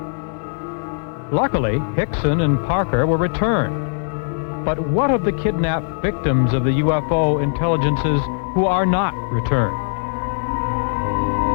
Luckily, Hickson and Parker were returned. But what of the kidnapped victims of the UFO intelligences who are not returned?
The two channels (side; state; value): right; silent; 62 dB below the other